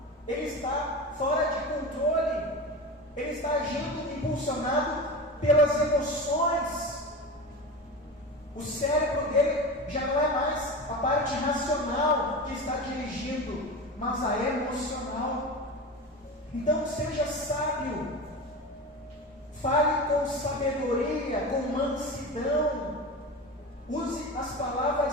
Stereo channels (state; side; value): normal; both; correlation 0.27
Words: ele está fora de controle, ele está agindo impulsionado pelas emoções. O cérebro dele já não é mais a parte racional que está dirigindo, mas a emocional. Então seja sábio, fale com sabedoria, com mansidão, use as